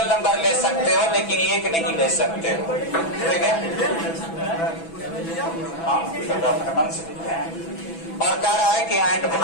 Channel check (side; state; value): right; late; 6.1 ms